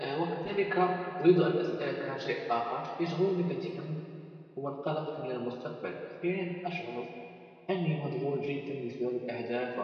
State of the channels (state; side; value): identical; both; correlation 1.00